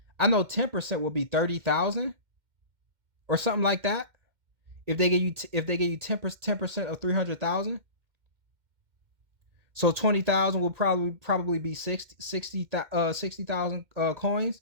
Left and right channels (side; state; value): left; late; 2.1 ms